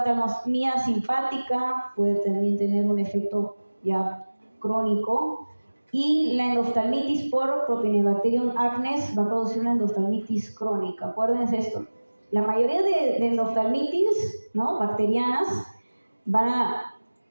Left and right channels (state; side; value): inverted; both; correlation -1.00